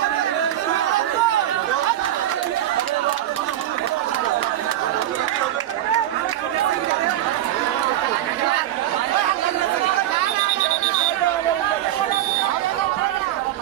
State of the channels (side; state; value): left; quieter; 12.8 dB